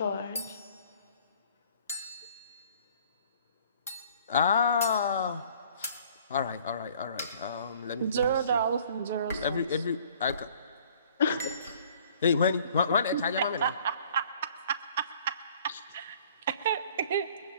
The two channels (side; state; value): both; inverted; correlation -0.55